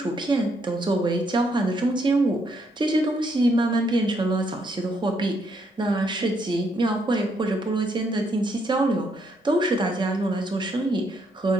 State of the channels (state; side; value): normal; both; correlation 0.74